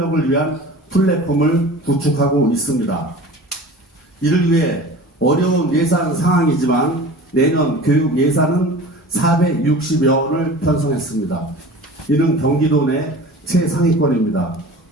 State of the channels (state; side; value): normal; both; correlation 0.39